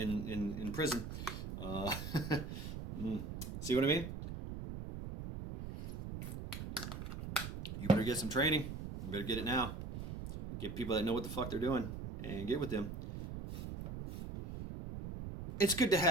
prison. See what I mean? You better get some training. You better get it now. Get people that know what the fuck they're doing and get with them. It's good to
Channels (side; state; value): right; noise; rumble, 7 dB below the sound